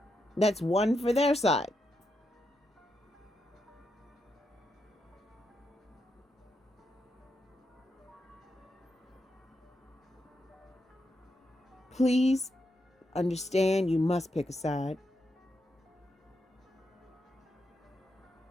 That's one for their side. Please understand, you must pick a side.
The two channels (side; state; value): both; normal; correlation 0.83